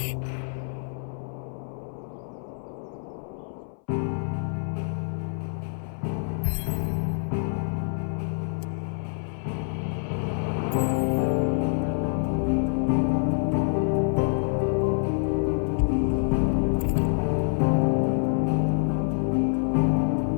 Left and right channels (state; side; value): silent; right; 60 dB below the other